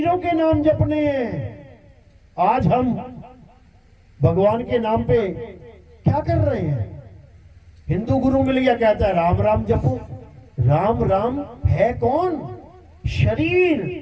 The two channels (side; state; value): both; identical; correlation 1.00